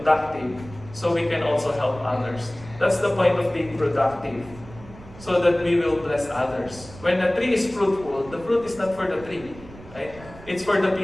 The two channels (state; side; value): noise; right; rumble, 18 dB below the sound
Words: so we can also help others. That's the point of being productive, so that we will bless others. When a tree is fruitful, the fruit is not for the tree, right? It's for the